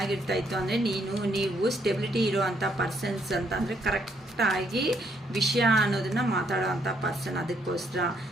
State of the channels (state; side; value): normal; both; correlation 0.71